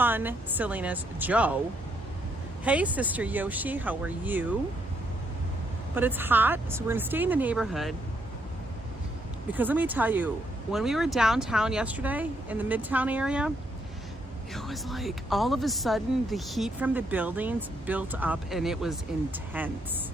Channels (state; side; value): normal; both; correlation 0.75